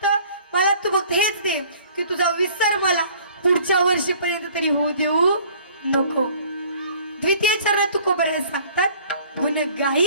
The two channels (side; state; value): both; inverted; correlation -0.53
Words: मला तू फक्त हेच दे की तुझा विसर मला पुढच्या वर्षीपर्यंत तरी होऊ देऊ नको. द्वितीय चरणात तुकोबरे सांगतात, गुण